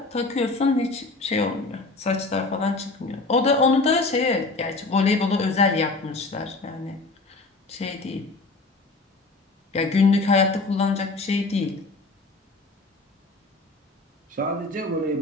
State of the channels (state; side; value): quieter; right; 3.4 dB